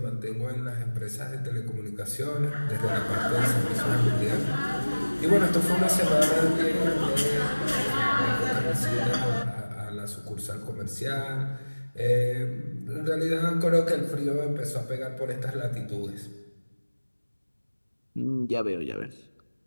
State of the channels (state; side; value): inverted; both; correlation -1.00